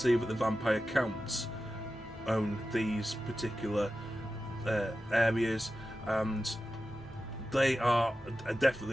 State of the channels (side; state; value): both; normal; correlation 0.93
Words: that the Vampire Counts own these particular areas, and they are